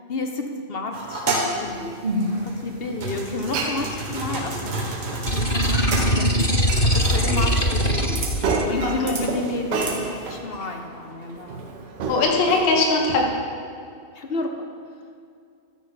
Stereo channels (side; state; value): right; late; 2.5 ms